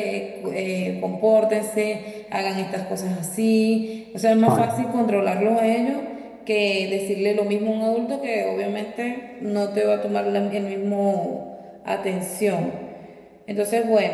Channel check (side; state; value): both; identical; correlation 1.00